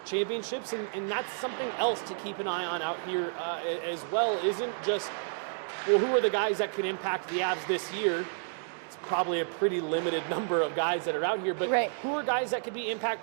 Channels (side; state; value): left; silent; digital silence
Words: championships, and that's something else to keep an eye on out here as well. Isn't just, well, who are the guys that could impact the Avs this year? It's probably a pretty limited number of guys that are out here, but who are guys that could be